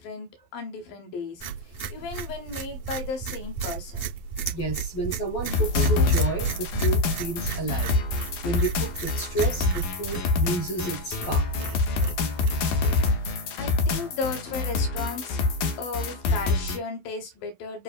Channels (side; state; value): right; late; 12 ms